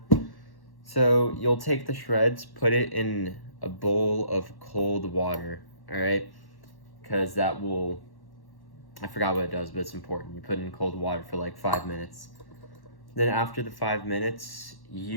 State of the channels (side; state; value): right; late; 1.1 ms